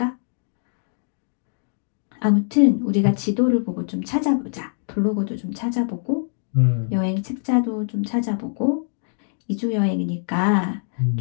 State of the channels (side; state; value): right; silent; digital silence